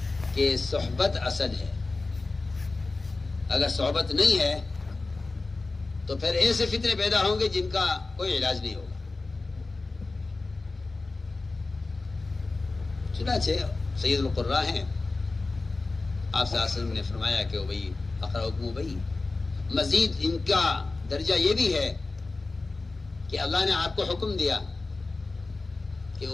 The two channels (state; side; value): quieter; right; 3.5 dB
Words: کہ صحبت اصل ہے. اگر صحبت نہیں ہے تو پھر ایسے فتنے پیدا ہوں گے جن کا کوئی علاج نہیں ہوگا. چنانچہ سید القراء ہیں، آپ صلی اللہ علیہ وسلم نے فرمایا کہ ابی اقرأکم ابی، مزید ان کا درجہ یہ بھی ہے کہ اللہ نے آپ کو حکم دیا کہ